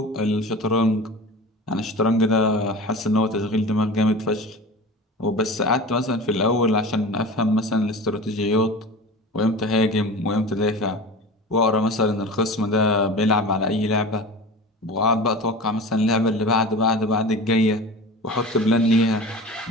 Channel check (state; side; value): normal; both; correlation 0.34